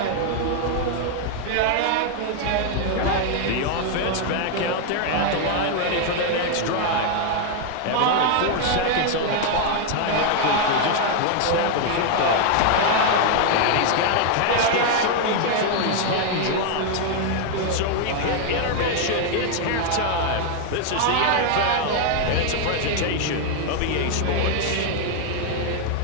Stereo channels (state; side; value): different; both; correlation 0.00